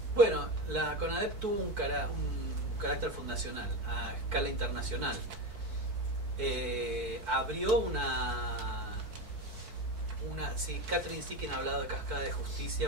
Bueno, la CONADEP tuvo un carácter fundacional a escala internacional. Abrió sí, Catherine Sikin ha hablado de cascada de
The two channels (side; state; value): left; late; 4.6 ms